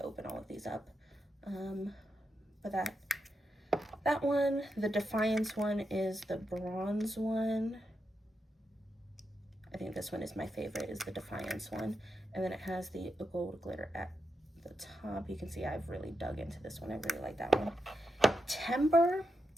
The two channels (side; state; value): both; normal; correlation 0.85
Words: open all of these up. But that one, the Defiance one, is the bronze one. I think this one is my favorite, is the Defiance one. And then it has the gold glitter at the top. You can see I've really dug into this one. I really like that one. Timber,